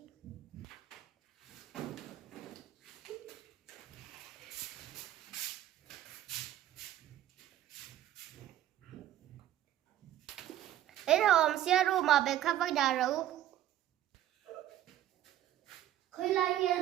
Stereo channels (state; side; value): quieter; left; 12.5 dB